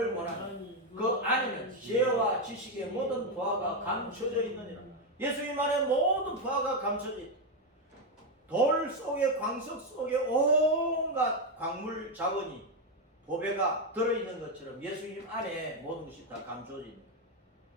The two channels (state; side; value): normal; both; correlation 0.06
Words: 원하는 그 안에는 지혜와 지식의 모든 부하가 감춰져 있느니라. 예수님 안에 모든 부하가 감춰져 있다. 돌 속에, 광석 속에 온갖 광물 자원이, 보배가 들어있는 것처럼 예수님 안에 모든 것이 다 감춰져 있는 거예요.